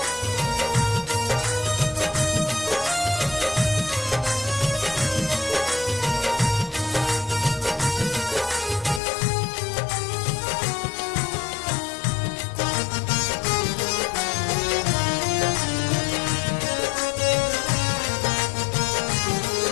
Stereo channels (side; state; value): right; drops out; at 9.0 s